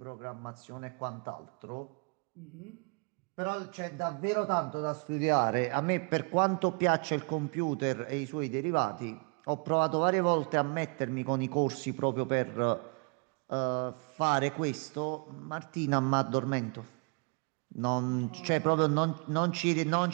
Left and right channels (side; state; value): left; quieter; 35.5 dB